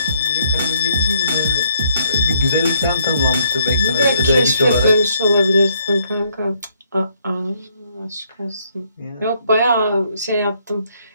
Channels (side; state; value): both; inverted; correlation -0.69